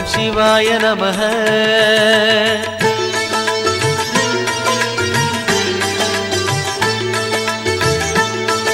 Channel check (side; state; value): both; identical; correlation 1.00